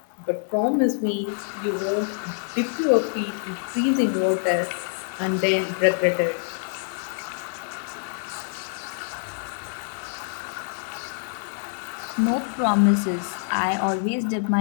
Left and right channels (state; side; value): silent; right; 61 dB below the other